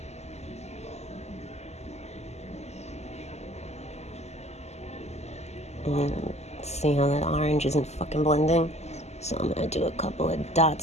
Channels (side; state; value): right; late; 0.32 ms